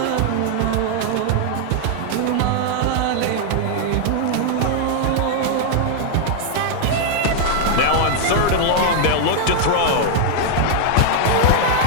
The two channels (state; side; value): different; both; correlation 0.00